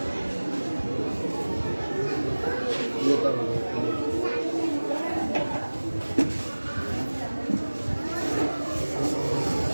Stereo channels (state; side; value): inverted; both; correlation -1.00